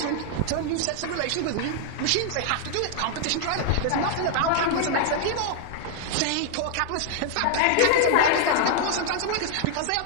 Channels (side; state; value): both; different; correlation 0.00